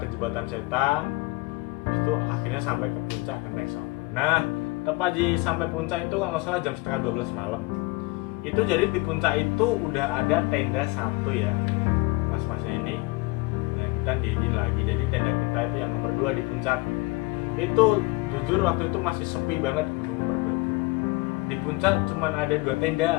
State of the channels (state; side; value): quieter; right; 23.8 dB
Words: ke jembatan setan. Habis itu akhirnya sampai ke puncak Kendeng Songo. Nah tepat di sampai puncak itu kalau nggak salah jam setengah 12 malam. Itu jadi di puncak itu udah ada tenda satu ya, mas-masnya ini. Nah kita diri lagi, jadi tenda kita itu yang nomor 2 di puncak. Itu jujur waktu itu masih sepi banget Gunung Merbabu. Di puncak cuman ada 2